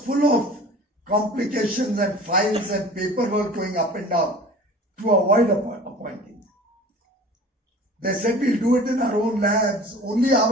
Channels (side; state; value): both; normal; correlation 0.42